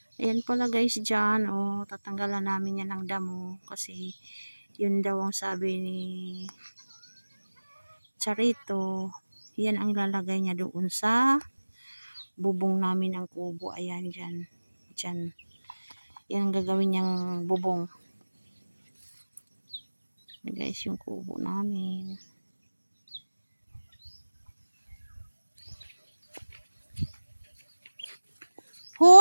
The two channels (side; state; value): both; inverted; correlation -1.00